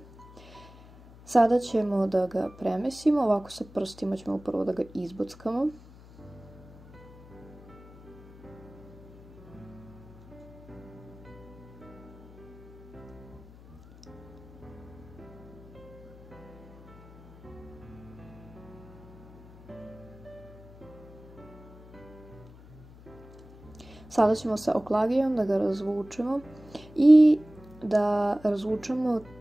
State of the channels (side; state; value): left; noise; hum, 20 dB below the sound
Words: Sada ćemo da ga premesimo, ovako sa prstima ćemo prvo da ga izbockamo. Sada ćemo sa oklagijom da ga razvučemo i da razvučemo